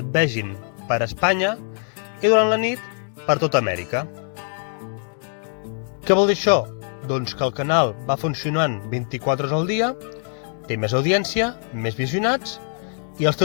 vegin per Espanya i durant la nit per tota Amèrica. Què vol dir això? Doncs que el canal va funcionant 24 hores al dia, té més audiència, més visionats i els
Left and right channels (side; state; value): right; silent; 60 dB below the other